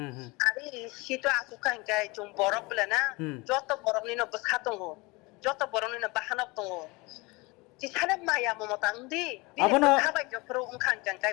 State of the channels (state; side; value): quieter; right; 25.0 dB